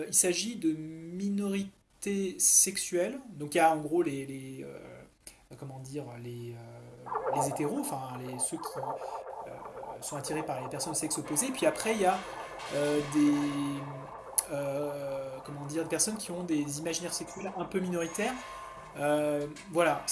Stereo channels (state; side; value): identical; both; correlation 1.00